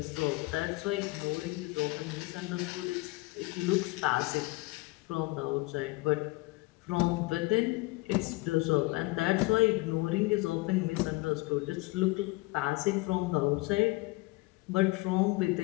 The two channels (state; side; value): quieter; right; 22.7 dB